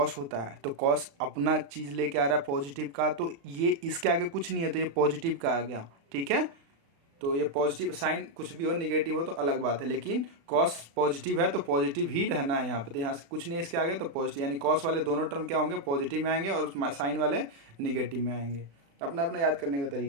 होता है तो कॉस अपना चीज लेके आ रहा है पॉजिटिव का, तो ये इसके आगे कुछ नहीं है तो ये पॉजिटिव का आ गया। ठीक है, तो ये पॉजिटिव, साइन कुछ भी हो निगेटिव हो तो अलग बात है, लेकिन कॉस पॉजिटिव है तो पॉजिटिव ही रहना है यहाँ पे। तो यहाँ से कुछ नहीं इसके आगे तो पॉजिटिव, यानी कॉस वाले दोनों टर्म क्या होंगे? पॉजिटिव में आएंगे और साइन वाले निगेटिव में आएंगे। अपना अपना याद करने का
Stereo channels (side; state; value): left; late; 36 ms